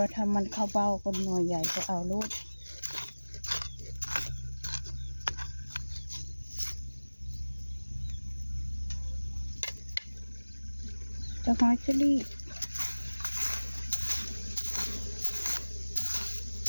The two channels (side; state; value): both; inverted; correlation -1.00